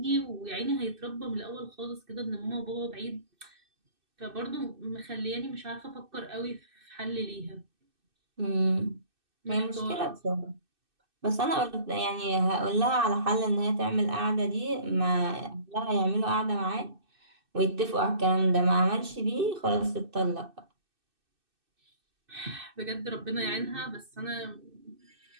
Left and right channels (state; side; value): late; left; 2.6 ms